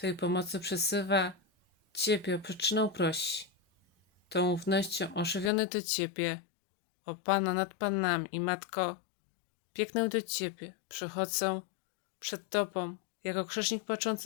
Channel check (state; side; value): drops out; right; at 5.5 s